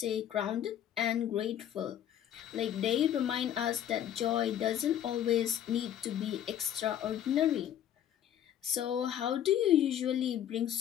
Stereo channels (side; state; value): right; quieter; 10.4 dB